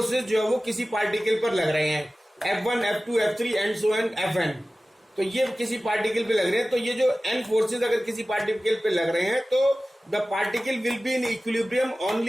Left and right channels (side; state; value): both; normal; correlation 0.96